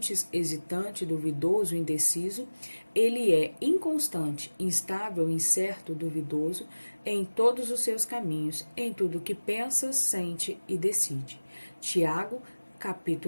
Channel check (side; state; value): both; inverted; correlation -1.00